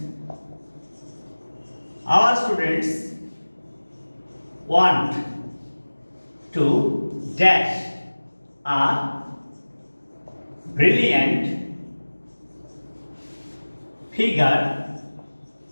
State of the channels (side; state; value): both; inverted; correlation -1.00